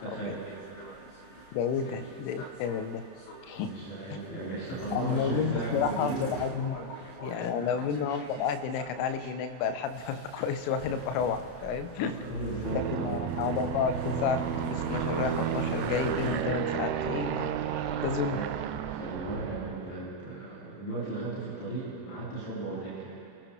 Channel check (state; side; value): late; right; 31 ms